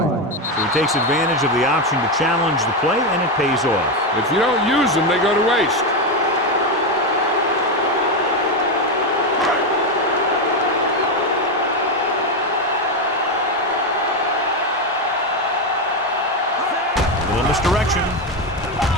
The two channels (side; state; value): both; normal; correlation 0.10